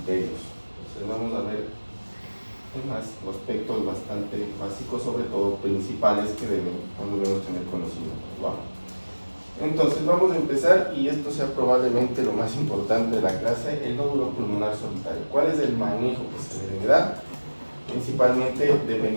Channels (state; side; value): inverted; both; correlation -1.00